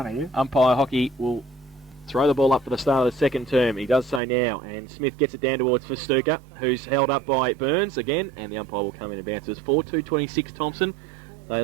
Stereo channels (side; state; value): left; drops out; at 4.2 s